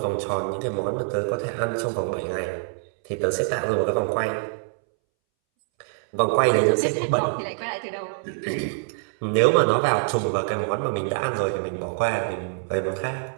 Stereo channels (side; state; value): left; silent; 62 dB below the other